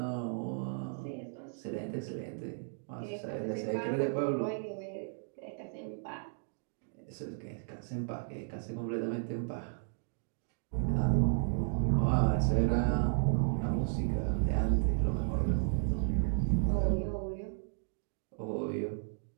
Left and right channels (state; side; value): silent; left; digital silence